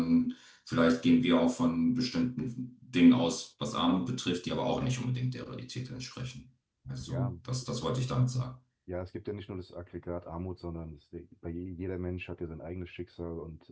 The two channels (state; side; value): identical; both; correlation 1.00